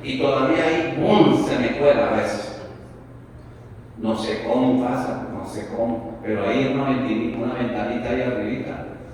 y todavía hay se me cuela a veces. No sé cómo pasa, no sé cómo, pero ahí una ventanita ahí arribita,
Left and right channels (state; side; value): identical; both; correlation 1.00